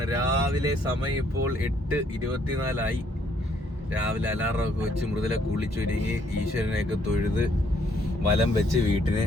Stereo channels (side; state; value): both; normal; correlation 0.68